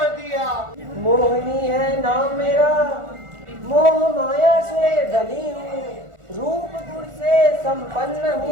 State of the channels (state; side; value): late; left; 1.4 ms